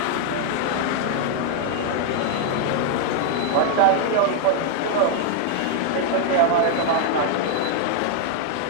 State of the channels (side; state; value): both; different; correlation 0.00